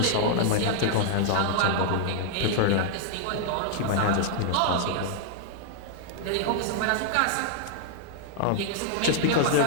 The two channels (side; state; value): both; different; correlation 0.00